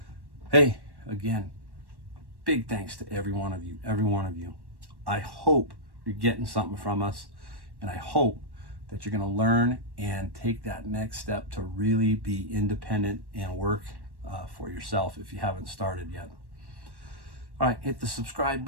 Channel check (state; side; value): late; left; 1.1 ms